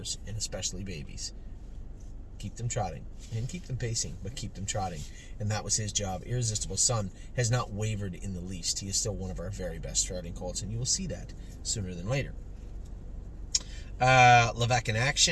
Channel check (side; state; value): both; identical; correlation 1.00